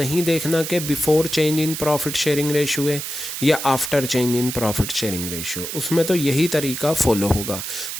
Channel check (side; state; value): right; noise; hiss, 6 dB below the sound